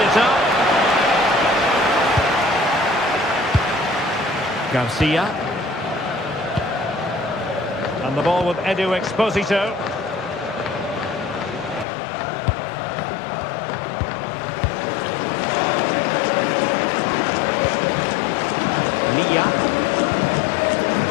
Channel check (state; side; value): drops out; right; at 11.9 s